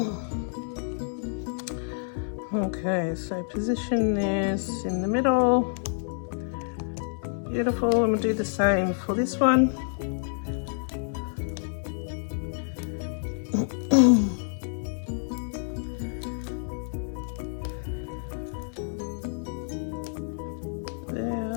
Okay, so position this in the middle. Beautiful, and we'll do the same for this one.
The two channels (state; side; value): silent; right; 59 dB below the other